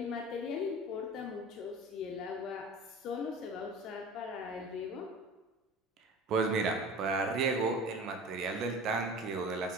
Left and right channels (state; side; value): normal; both; correlation 0.37